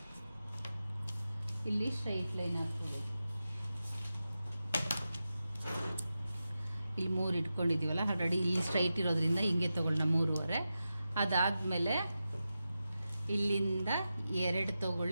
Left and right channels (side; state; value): both; inverted; correlation -0.91